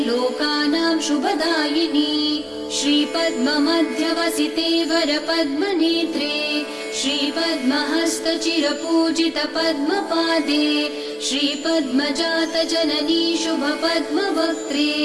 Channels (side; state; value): both; identical; correlation 1.00